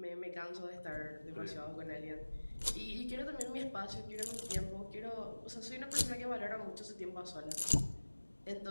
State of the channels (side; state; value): both; inverted; correlation -1.00